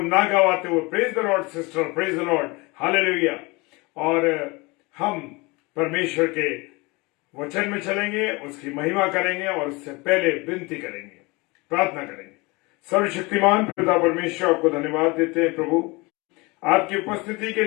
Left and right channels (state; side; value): quieter; right; 25.4 dB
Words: गवाते हुए, praise the Lord sister, praise the Lord, hallelujah. और हम परमेश्वर के वचन में चलेंगे, उसकी महिमा करेंगे और उससे पहले विनती करेंगे, प्रार्थना करेंगे। सर्वशक्तिमान पिता परमेश्वर, आपको धन्यवाद देते हैं प्रभु, आपकी उपस्थिति के